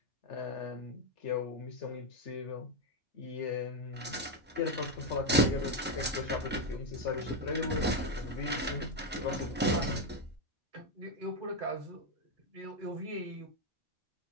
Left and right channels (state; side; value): normal; both; correlation 0.05